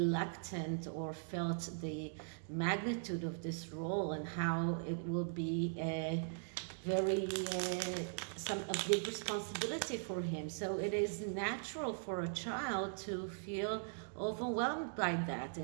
or felt the magnitude of this role and how it will be a big responsibility for him. So it is natural for a child to feel overwhelmed by that.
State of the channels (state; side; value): silent; left; digital silence